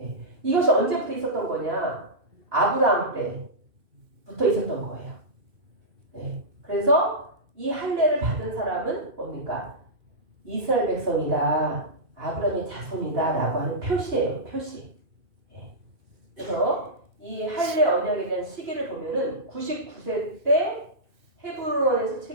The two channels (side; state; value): left; late; 2.8 ms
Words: 이것이 언제부터 있었던 거냐? 아브라함 때부터 있었던 거예요. 예. 그래서 이 할례를 받은 사람은 뭡니까? 이스라엘 백성이다. 아브라함의 자손이다. 라고 하는 표시예요. 표시. 예. 그래서 이 할례 언약에 대한 시기를 보면은 99세 때 헤브론에서